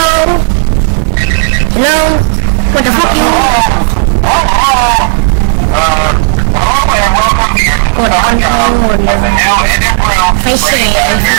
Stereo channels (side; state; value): left; silent; digital silence